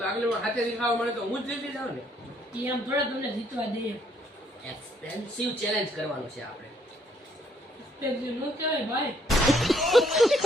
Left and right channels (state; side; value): normal; both; correlation 0.68